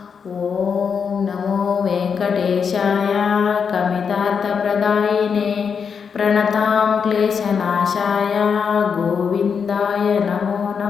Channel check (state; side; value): quieter; right; 6.4 dB